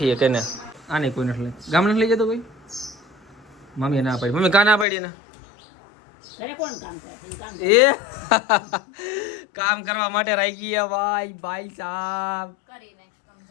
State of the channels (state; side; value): drops out; right; at 4.9 s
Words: હે કેને આને કોઈ નથી લઈ ગામડે લઈ જતો કોઈ. મમ્મી ના પાડી. મમ્મી કા ના પાડી ને? એ કામ કરવા માટે રાખી ગયા ભાઈ સાહેબ.